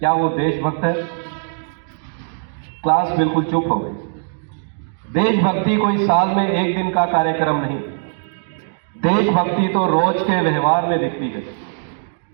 वो देशभक्त है? क्लास बिल्कुल चुप हो गई। देशभक्ति कोई साल में एक दिन का कार्यक्रम नहीं, देशभक्ति तो रोज के व्यवहार में दिखती है।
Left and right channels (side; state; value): left; silent; digital silence